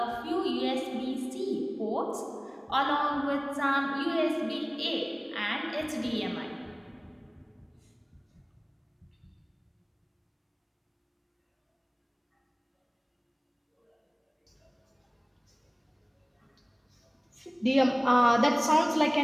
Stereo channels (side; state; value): both; identical; correlation 1.00